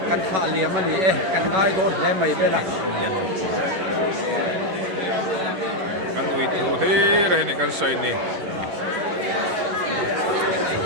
kan tha lia mani kan ngai don he mai bela kan ui thu he re ni kan soi ni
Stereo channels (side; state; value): left; late; 11 ms